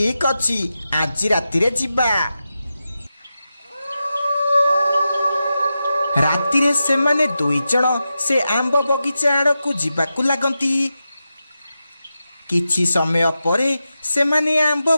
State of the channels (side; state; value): both; inverted; correlation -0.90